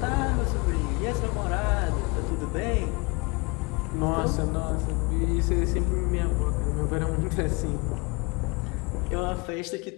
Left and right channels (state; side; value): quieter; right; 28.4 dB